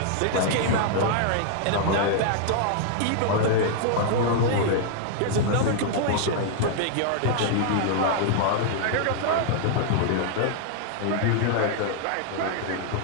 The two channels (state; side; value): different; both; correlation -0.01